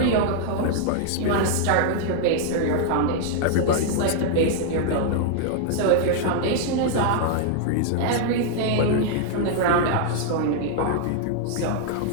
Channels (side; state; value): both; different; correlation -0.01